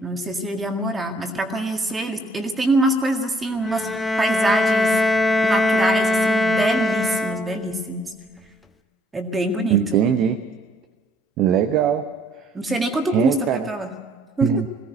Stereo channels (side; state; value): both; normal; correlation 0.65